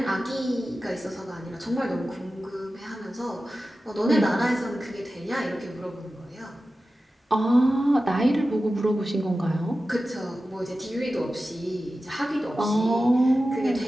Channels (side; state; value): both; normal; correlation 0.94